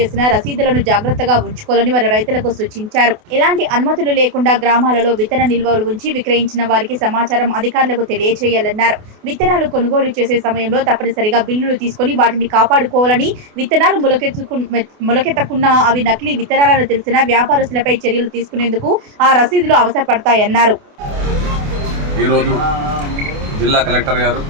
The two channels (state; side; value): late; left; 28 ms